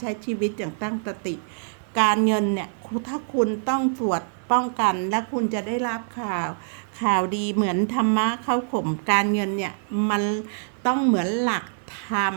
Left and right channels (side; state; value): left; silent; 62 dB below the other